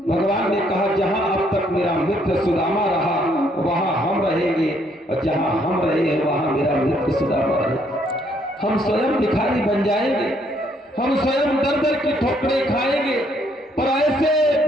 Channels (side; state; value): both; normal; correlation 0.69